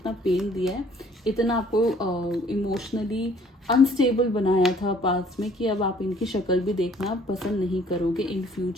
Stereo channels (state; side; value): normal; both; correlation 0.58